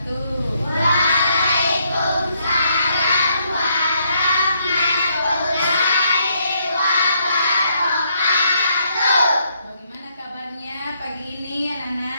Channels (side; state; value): both; inverted; correlation -0.73